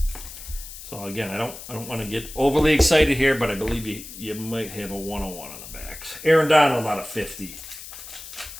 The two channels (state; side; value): noise; left; hiss, 13 dB below the sound